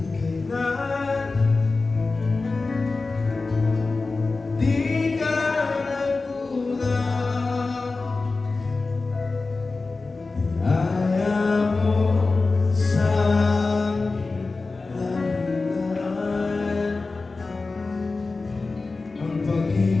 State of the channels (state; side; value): quieter; right; 3.7 dB